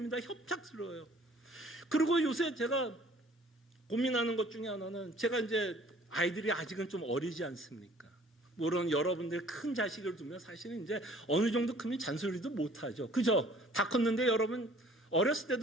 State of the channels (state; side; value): normal; both; correlation 0.54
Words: 협착스러워요. 그리고 요새 제가 고민하는 것 중에 하나는, 제가 이제 아이들이 아직은 좀 어리지 않습니까? 물론 여러분들 큰 자식을 두면 사실은 이제 어느 정도 크면 잔소리도 못하죠. 그죠? 다 컸는데 여러분 어렸을